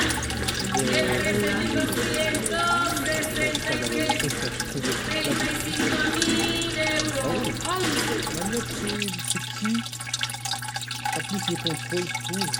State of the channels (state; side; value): identical; both; correlation 1.00